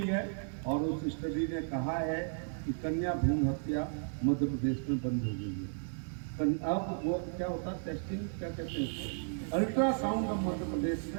है और उस स्टडी ने कहा है कि कन्या भ्रूण हत्या मध्य प्रदेश में बंद हो गई है। अब वो क्या होता है, टेस्टिंग क्या कहते हैं उसको, अल्ट्रासाउंड अब मध्य प्रदेश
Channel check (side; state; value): left; silent; digital silence